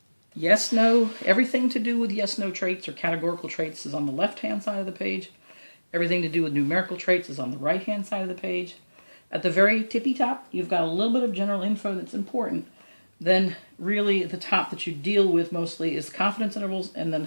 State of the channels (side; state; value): both; inverted; correlation -1.00